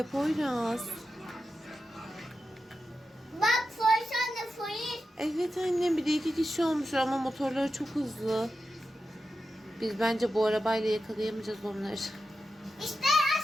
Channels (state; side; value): normal; both; correlation 0.90